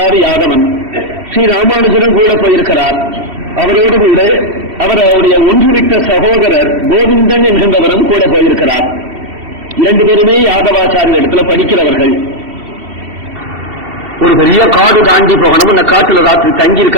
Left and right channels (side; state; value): left; late; 2.7 ms